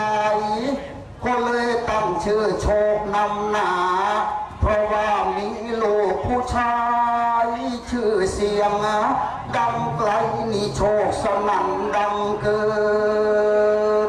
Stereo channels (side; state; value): both; identical; correlation 1.00